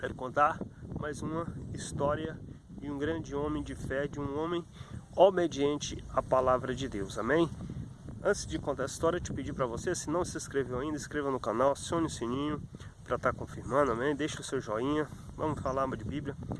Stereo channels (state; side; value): identical; both; correlation 1.00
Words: contar mais uma história de um grande homem de fé, de um homem obediente à palavra de Deus, amém? Antes de contar a história, eu te pedi para você, se não se inscreveu ainda, inscreva no canal, acione o sininho para estar confirmando, amém? Deixa o seu joinha, vamos falar de Bíblia,